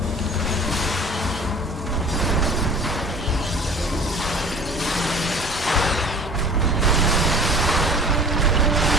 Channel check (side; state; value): both; normal; correlation 0.44